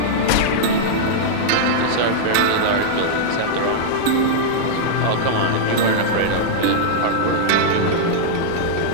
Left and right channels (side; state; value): both; different; correlation -0.02